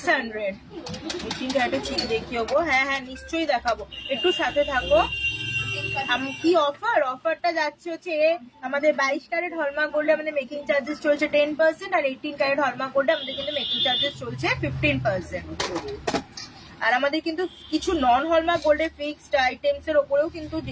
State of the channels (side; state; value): both; identical; correlation 1.00